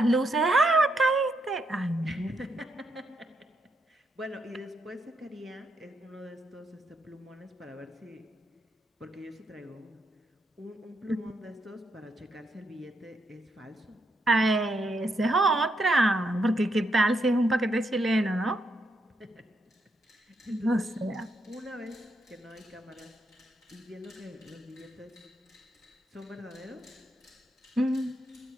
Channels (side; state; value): both; normal; correlation 0.79